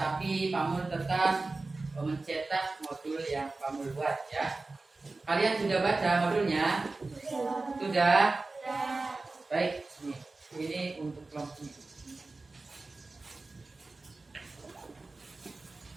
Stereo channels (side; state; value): left; quieter; 3.5 dB